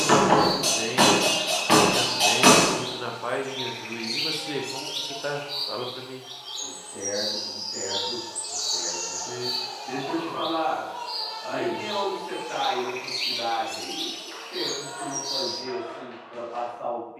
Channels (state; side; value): identical; both; correlation 1.00